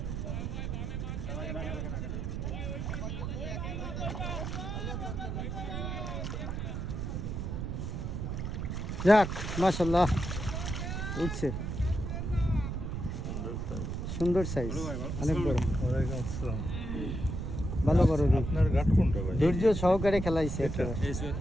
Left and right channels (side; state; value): right; noise; rumble, 3 dB below the sound